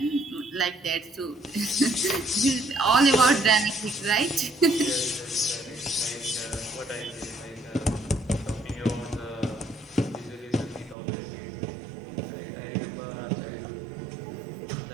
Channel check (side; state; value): left; drops out; at 11.0 s